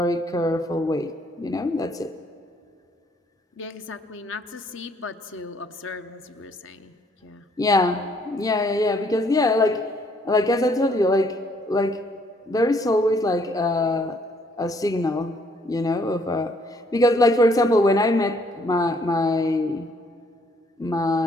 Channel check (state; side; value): normal; both; correlation 0.66